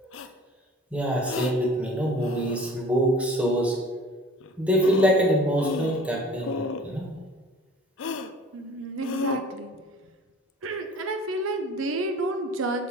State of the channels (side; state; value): both; normal; correlation 0.46